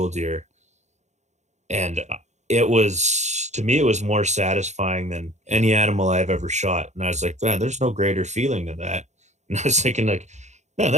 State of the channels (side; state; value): left; late; 0.33 ms